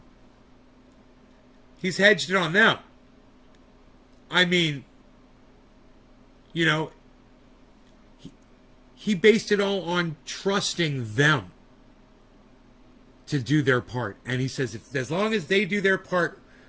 He's hedged it on them. I mean, you know, he based it all on trusting them to do their part. And he says, if, as long as they do their part,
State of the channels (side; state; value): both; identical; correlation 1.00